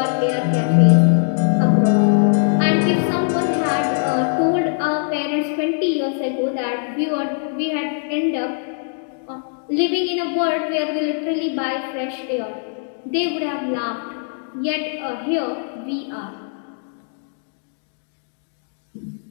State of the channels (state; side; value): silent; right; digital silence